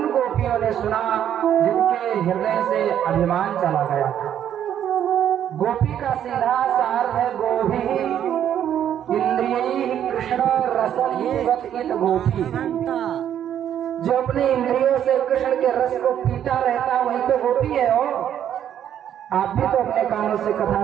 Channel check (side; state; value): left; quieter; 10.0 dB